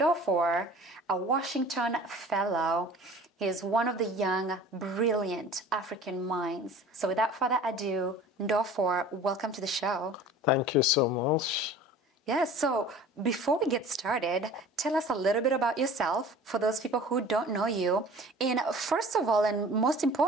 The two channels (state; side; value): normal; both; correlation 0.44